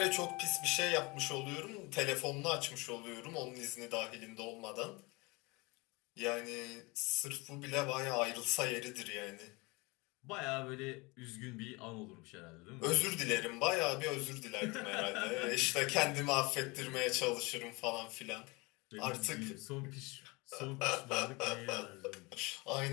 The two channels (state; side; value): quieter; right; 25.7 dB